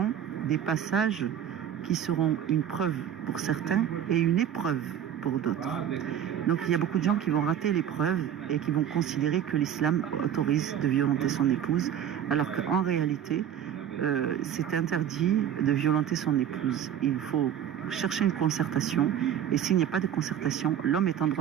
des passages qui seront une preuve pour certains et une épreuve pour d'autres. Donc il y a beaucoup de gens qui vont rater l'épreuve et qui vont considérer que l'islam autorise de violenter son épouse, alors qu'en réalité, c'est interdit de violenter son épouse. Il faut chercher une concertation, et s'il n'y a pas de concertation, l'homme est en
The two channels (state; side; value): quieter; left; 9.6 dB